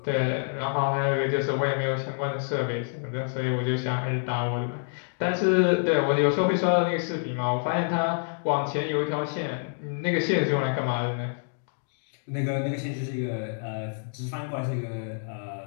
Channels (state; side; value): silent; right; digital silence